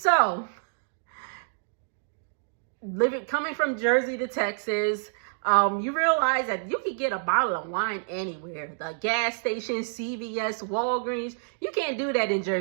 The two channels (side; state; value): left; silent; digital silence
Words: coming from Jersey to Texas, you realize that you can get a bottle of wine anywhere. The gas station, CVS, Walgreens. You can't do that in